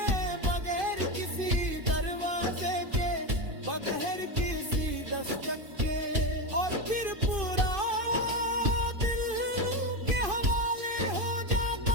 बगैर किसी दरवाजे के, बगैर किसी दस्तक के, और फिर पूरा दिल के हवाले हो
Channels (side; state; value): left; late; 2.5 ms